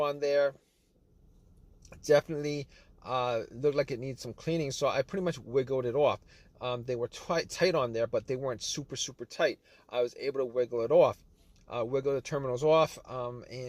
there. Definitely looked like it needs some cleaning, so I pretty much wiggled it off. They were tight on there, but they weren't super tight. I was able to wiggle it off, wiggle the terminals off,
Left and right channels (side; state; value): both; identical; correlation 1.00